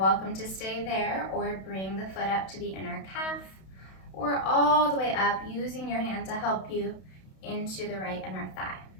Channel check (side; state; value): right; late; 32 ms